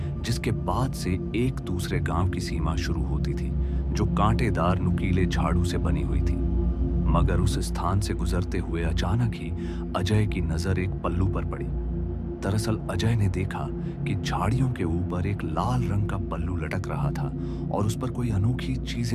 जिसके बाद से एक दूसरे गांव की सीमा शुरू होती थी, जो कांटेदार नुकीले झाड़ू से बनी हुई थी। मगर उस स्थान से गुजरते हुए अचानक ही अजय की नजर एक पल्लू पर पड़ी। दरअसल अजय ने देखा कि झाड़ियों के ऊपर एक लाल रंग का पल्लू लटक रहा था और उस पर कोई अनोखी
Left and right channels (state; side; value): identical; both; correlation 1.00